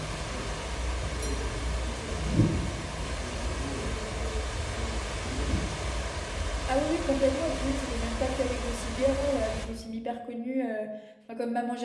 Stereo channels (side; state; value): both; identical; correlation 1.00